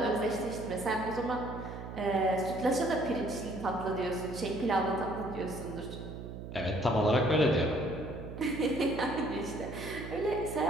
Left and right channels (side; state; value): right; noise; hum, 9 dB below the sound